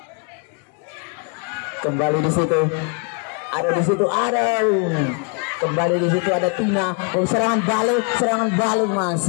Kembali di situ kembali di situ ada Tina. Serangan balik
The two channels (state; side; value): quieter; right; 34.0 dB